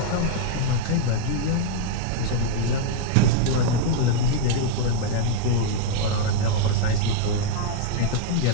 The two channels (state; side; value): different; both; correlation -0.01